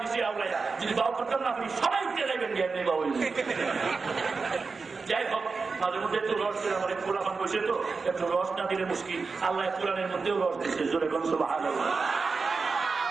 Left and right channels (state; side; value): quieter; left; 4.5 dB